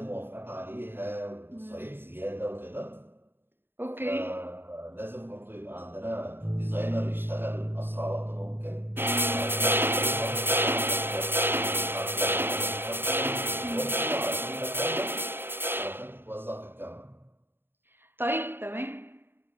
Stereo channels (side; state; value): left; late; 0.10 ms